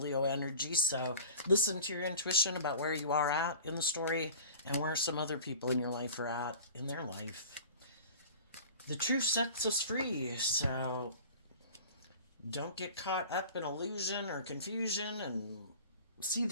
energy. So listen to your intuition about where you are at in the story and where some other people in your life are at in their life. The truth sets us free, so don't get caught up in illusion or confusion and see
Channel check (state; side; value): inverted; both; correlation -0.41